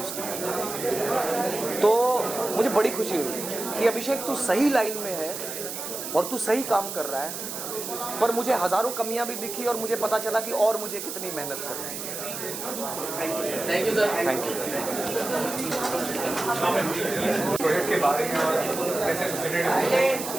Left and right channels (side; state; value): right; noise; hiss, 7 dB below the sound